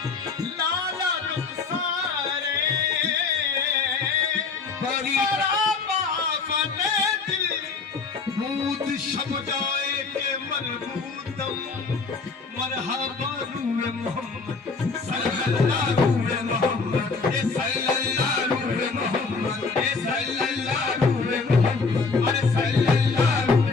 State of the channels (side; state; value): right; quieter; 4.6 dB